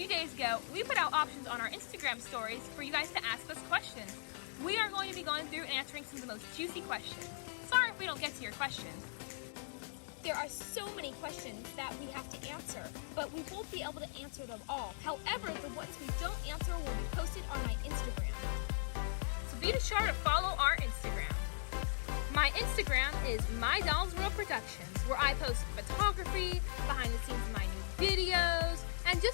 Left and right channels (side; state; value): right; silent; digital silence